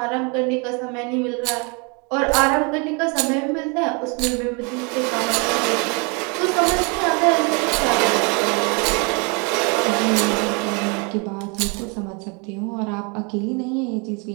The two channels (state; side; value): quieter; left; 33.0 dB